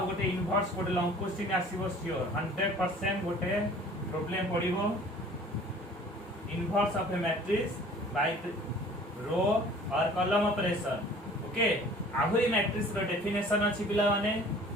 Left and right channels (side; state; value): both; normal; correlation 0.49